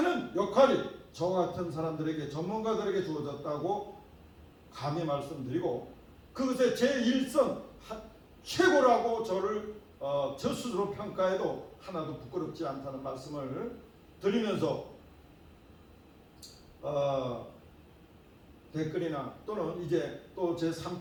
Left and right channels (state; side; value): identical; both; correlation 1.00